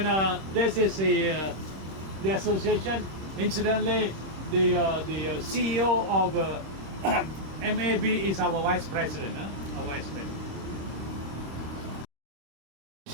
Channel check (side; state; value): left; late; 26 ms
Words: this is the association. Incidentally, the CEO of MAB is our vice president. Huh? Our vice president.